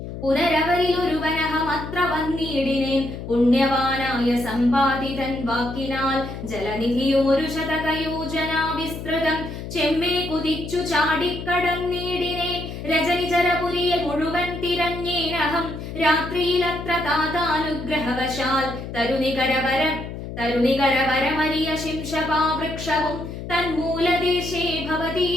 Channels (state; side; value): noise; left; hum, 9 dB below the sound